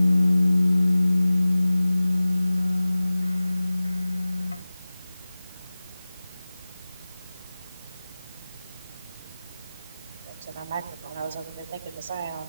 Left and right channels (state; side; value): inverted; both; correlation -0.97